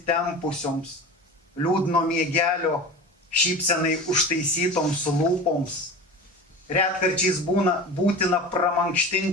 liūdno miegelio, šypsenai užtaisytoms lūpoms. Retkarčiais būtina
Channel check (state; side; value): normal; both; correlation 0.33